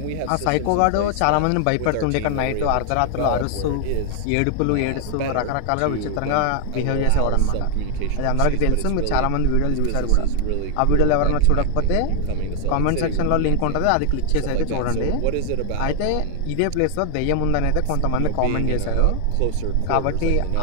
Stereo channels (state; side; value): different; both; correlation 0.00